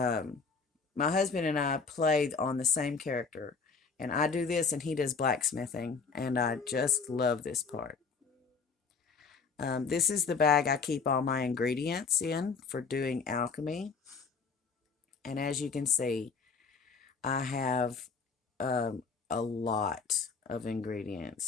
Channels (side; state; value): right; quieter; 5.1 dB